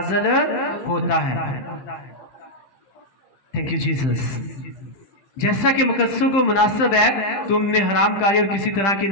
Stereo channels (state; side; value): late; right; 15 ms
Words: होता है। Thank you Jesus. जैसा कि मुकद्दसों को मुनासिब है तुमने हरामकारी और किसी तरह की